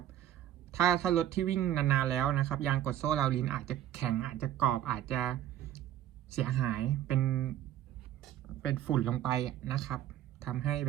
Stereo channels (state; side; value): quieter; left; 11.9 dB